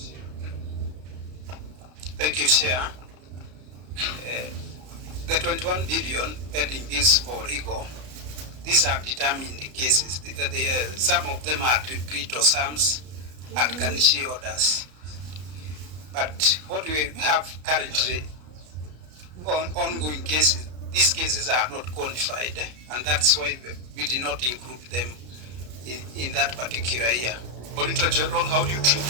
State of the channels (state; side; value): late; left; 33 ms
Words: Thank you, Chair. The 21 billion pending this for legal, these are determined cases. Some of them are decreto sums and garnishee orders. But what we have currently on ongoing cases, these cases are not qualified, and that's why we did not include them in that particular year. Auditor General, how do you treat